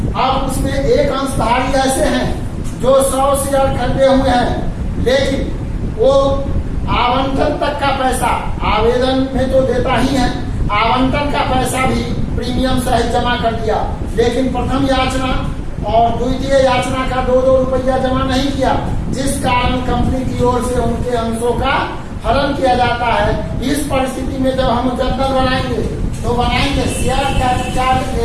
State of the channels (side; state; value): both; identical; correlation 1.00